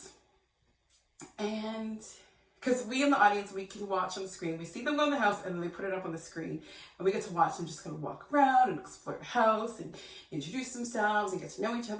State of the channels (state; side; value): identical; both; correlation 1.00